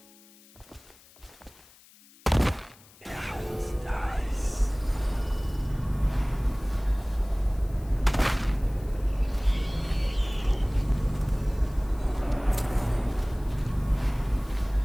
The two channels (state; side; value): noise; left; hiss, 25 dB below the sound